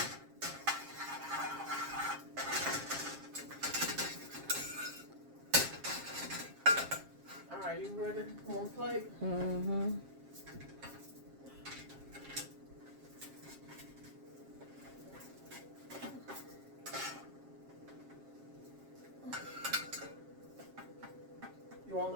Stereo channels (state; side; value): late; left; 7.4 ms